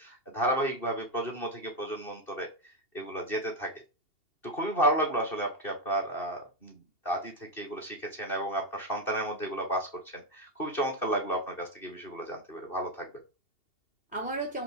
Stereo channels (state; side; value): late; right; 2.7 ms